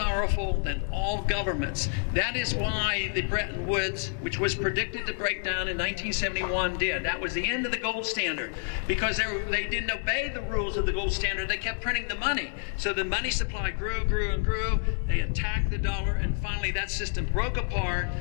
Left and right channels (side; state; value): right; silent; 59 dB below the other